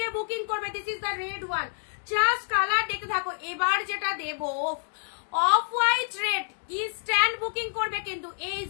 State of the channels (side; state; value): right; silent; digital silence